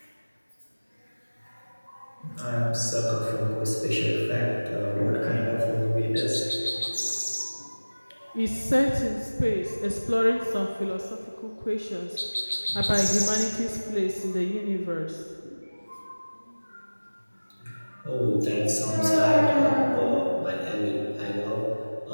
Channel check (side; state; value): both; inverted; correlation -1.00